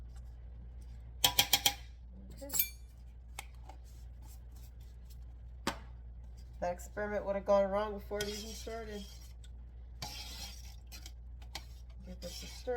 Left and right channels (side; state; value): both; identical; correlation 1.00